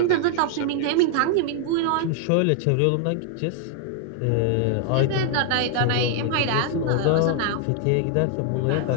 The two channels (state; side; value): different; both; correlation 0.00